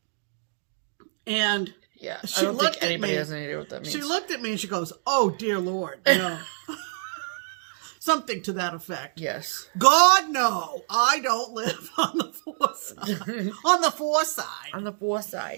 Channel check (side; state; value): left; silent; digital silence